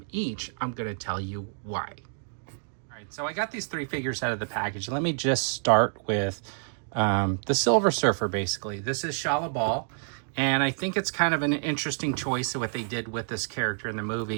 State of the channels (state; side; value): silent; left; digital silence